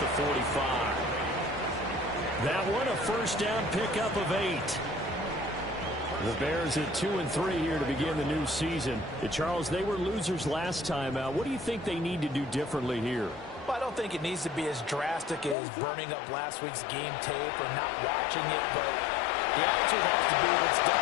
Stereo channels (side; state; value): right; drops out; at 15.6 s